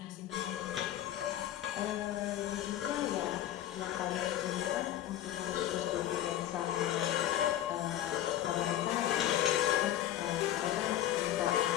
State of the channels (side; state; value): right; quieter; 12.3 dB